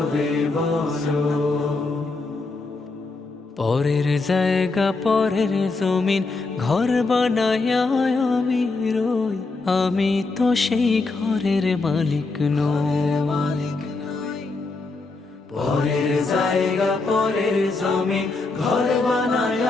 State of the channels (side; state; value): right; quieter; 3.7 dB